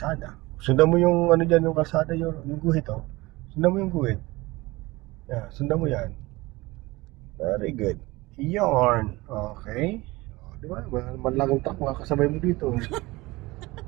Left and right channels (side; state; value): left; quieter; 21.3 dB